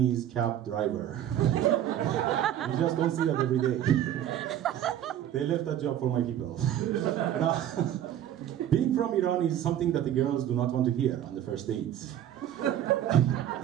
cab driver. You just don't see that every day. They left that job for my people. Now, being from Iran is something that the girls do not want to hear on the first date.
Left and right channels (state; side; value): quieter; left; 11.2 dB